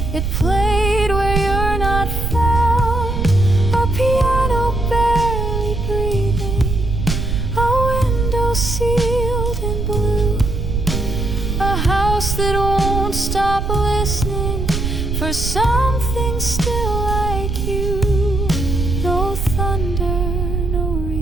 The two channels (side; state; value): right; noise; rumble, 1 dB below the sound